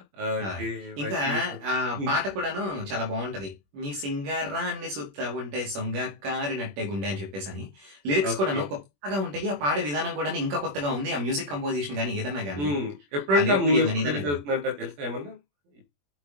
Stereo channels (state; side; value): late; left; 21 ms